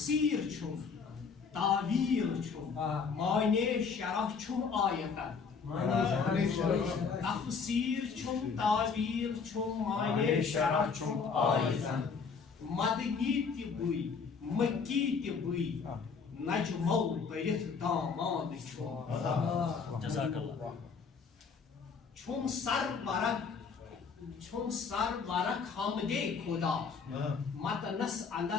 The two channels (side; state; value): right; quieter; 5.5 dB